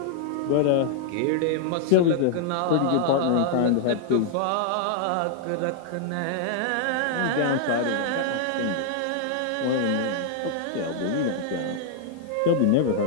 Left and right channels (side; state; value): both; different; correlation -0.01